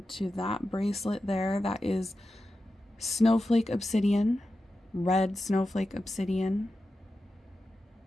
to that bracelet there. That is snowflake obsidian, red snowflake obsidian.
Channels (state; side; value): normal; both; correlation 0.91